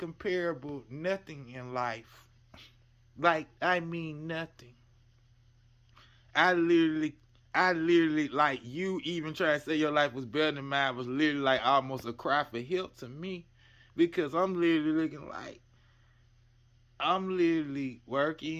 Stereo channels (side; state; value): both; identical; correlation 1.00